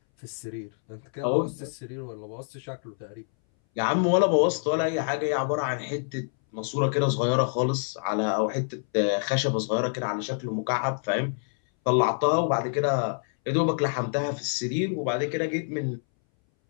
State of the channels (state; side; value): silent; right; 60 dB below the other